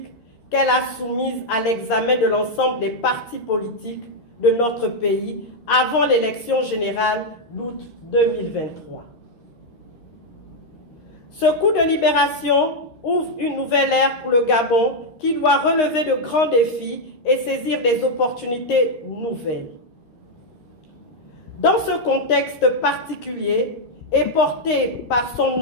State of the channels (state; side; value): late; right; 13 ms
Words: qu'elle a soumise à l'examen de l'ensemble des partis politiques de notre pays avant l'élection générale d'août 2023. Ce coup de libération ouvre une nouvelle ère pour le Gabon qui doit relever de grands défis et saisir des opportunités nouvelles. Dans ce contexte particulier et porté par son